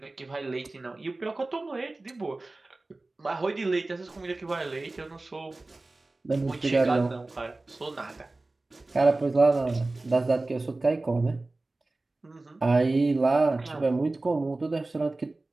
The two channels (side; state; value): left; quieter; 3.1 dB